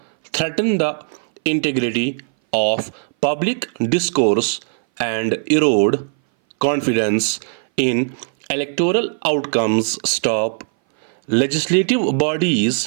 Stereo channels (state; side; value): silent; left; 60 dB below the other